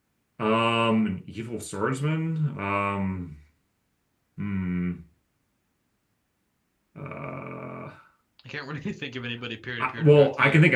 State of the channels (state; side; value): identical; both; correlation 1.00